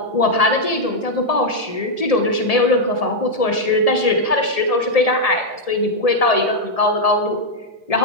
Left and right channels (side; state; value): right; late; 1.7 ms